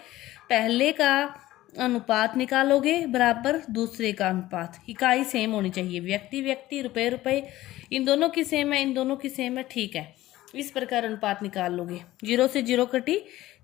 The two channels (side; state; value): right; quieter; 16.0 dB